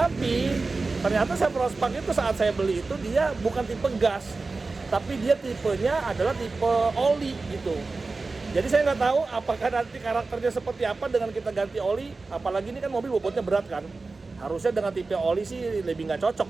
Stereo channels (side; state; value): left; quieter; 3.8 dB